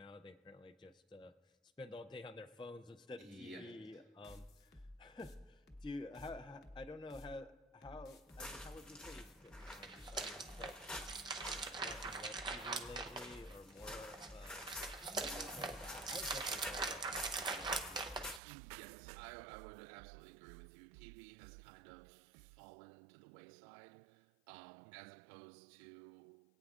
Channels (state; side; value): drops out; left; at 18.4 s